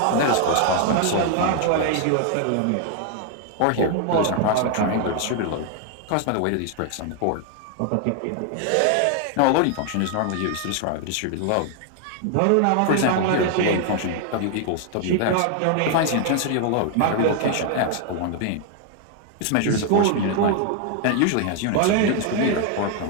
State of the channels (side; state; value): both; different; correlation 0.00